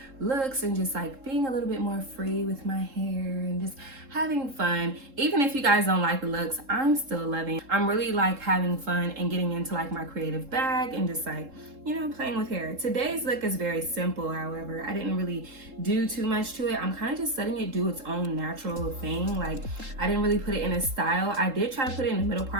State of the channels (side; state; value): left; late; 3.7 ms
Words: looks and just like being a little bit more free with my hair and just having fun. Even if you guys don't like the looks, I'm still loving. I'm really like having fun and getting into like my creative bag and just like, you know, playing with hair. Today's look is very simple, however. I didn't really do too much to it. I'm kind of just letting it do its own natural thing. Like, I didn't really put it in a style. I did try to put it in the middle